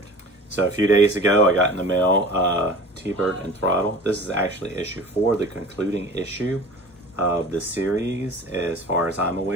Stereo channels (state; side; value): normal; both; correlation 0.41